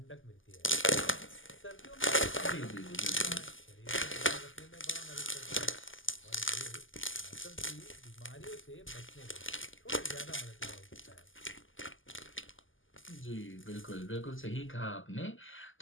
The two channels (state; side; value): late; right; 0.58 ms